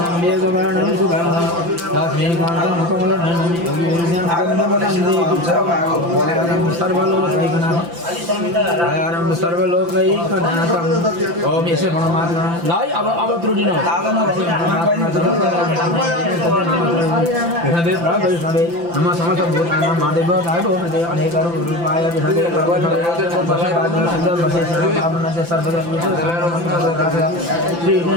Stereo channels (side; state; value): left; late; 5.9 ms